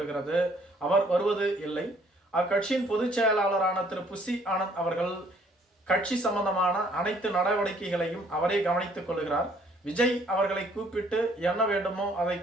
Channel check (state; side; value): normal; both; correlation 0.62